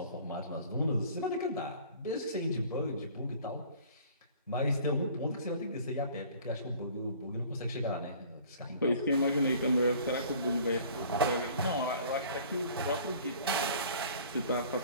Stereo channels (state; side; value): inverted; both; correlation -0.49